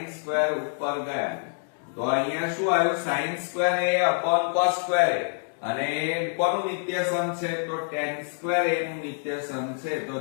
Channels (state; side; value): silent; right; digital silence